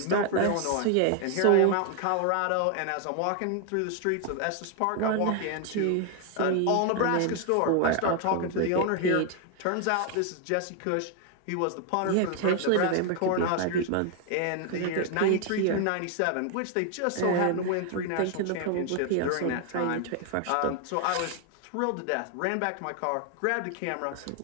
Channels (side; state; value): both; different; correlation 0.00